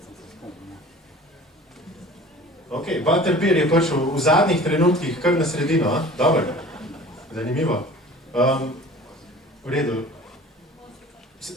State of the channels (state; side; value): normal; both; correlation 0.44